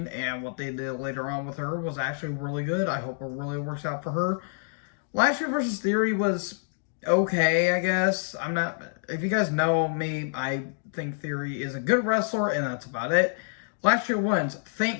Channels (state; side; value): silent; right; digital silence